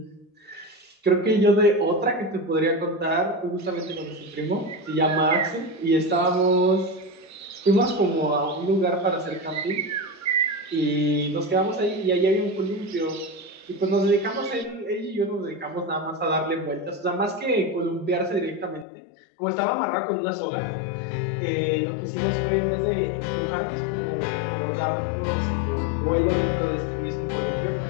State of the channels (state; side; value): drops out; right; at 18.9 s